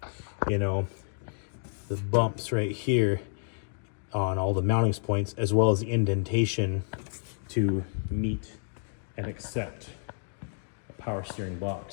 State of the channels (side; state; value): right; silent; digital silence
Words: the bumps right here on all the mounting points, as well as the indentation to meet and accept a power steering